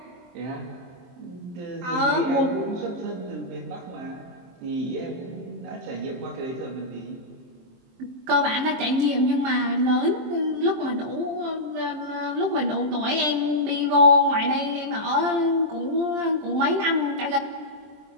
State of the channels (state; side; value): late; left; 23 ms